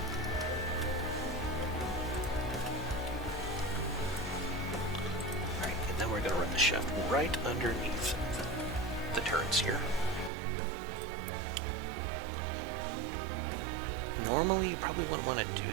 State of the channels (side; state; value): left; drops out; at 10.3 s